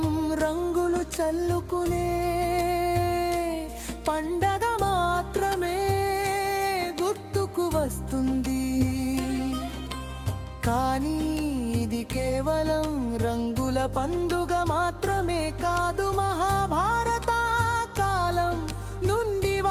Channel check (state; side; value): identical; both; correlation 1.00